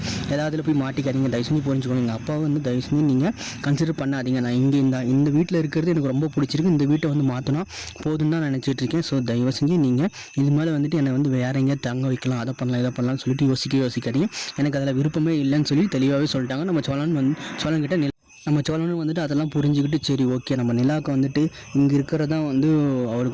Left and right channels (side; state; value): both; identical; correlation 1.00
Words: ஏதாவதுல போய் மாட்டிக்காதீங்க. தயவு செஞ்சு புரிஞ்சுக்கணும். எங்கள் அப்பாவை வந்து தயவு செஞ்சு நீங்கள் கன்சிடர் பண்ணாதீங்க. நான் இங்கே இந்த வீட்டில் இருக்கிறது எனக்கு ரொம்ப பிடிச்சிருக்கு. இந்த வீட்டை வந்து மாற்றினா போதுன்னு தான் நினச்சிட்டு இருக்கேன். ஸோ தயவு செஞ்சு நீங்கள் இது மேலே வந்துட்டு என்னை வந்து வேறு எங்கேயா தங்க வைக்கலாம், அதை பண்ணலாம் இதை பண்ணலாம்னு சொல்லிட்டு யோசிக்காதீங்க. எனக்கு அதில் விருப்பமே இல்லைன்னு சொல்லி தெளிவாகவே சொல்லிட்டாங்க. நம்ம சோழன்கிட்ட நம்ம சோழனும் வந்துட்டு அதெல்லாம் புரிஞ்சுக்கிட்டு சரி ஓகே நம்ம நிலாவுக்கு வந்துட்டு இங்கே இருக்கிறதான் வந்து